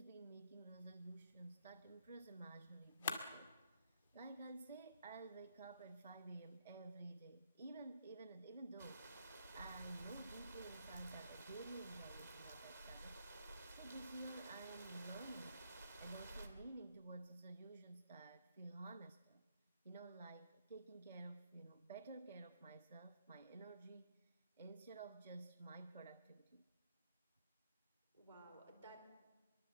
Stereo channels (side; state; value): both; inverted; correlation -0.74